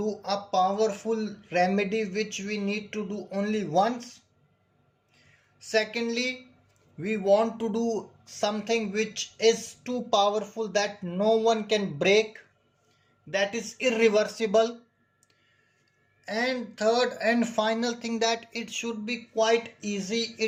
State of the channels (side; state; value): both; identical; correlation 1.00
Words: a powerful remedy which we need to do only once. Secondly, we want to do something which is too powerful that no one can break, that is irreversible. And third and final thing, that it should be quite easy,